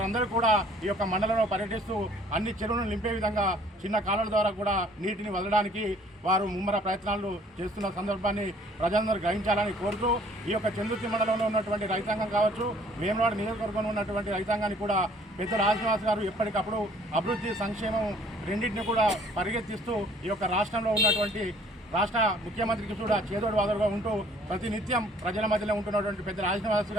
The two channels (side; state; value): both; normal; correlation 0.57